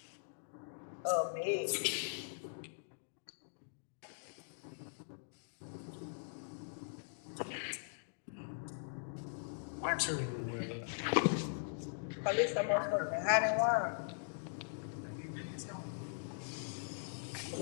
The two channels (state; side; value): silent; right; digital silence